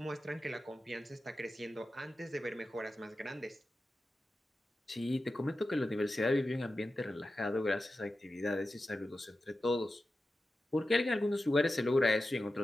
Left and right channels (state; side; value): normal; both; correlation 0.93